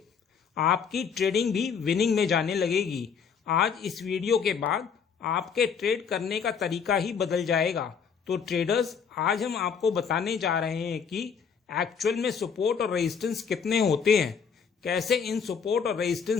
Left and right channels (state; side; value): quieter; right; 6.5 dB